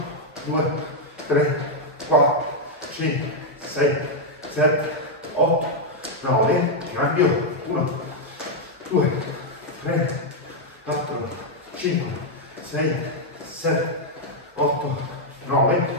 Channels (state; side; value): normal; both; correlation -0.01